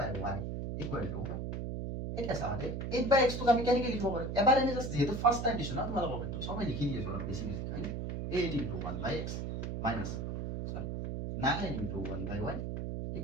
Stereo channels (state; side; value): noise; right; hum, 4 dB below the sound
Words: = এটা সামনে 8/x তো আমি কেনেকে লিখব পাৰো এবাৰ এনে জাস্ট যেহেতু ফাৰ্স্ট টাইম দিছো না তোমালোকৰ বেটো সবাই লিখি দিয়েছো অলপ বেছি হয়নে 8 * 1/x minus 9 * 1/y